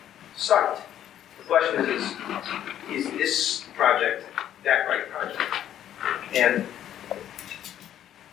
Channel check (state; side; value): quieter; right; 11.0 dB